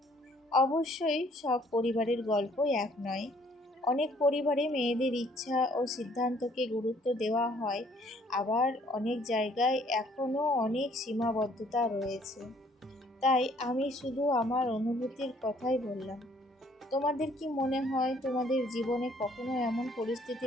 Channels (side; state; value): both; normal; correlation 0.61